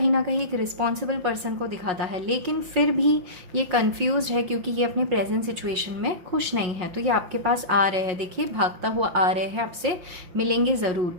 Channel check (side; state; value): left; late; 5.8 ms